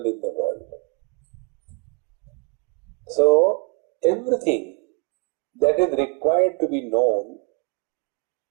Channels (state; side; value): quieter; left; 31.9 dB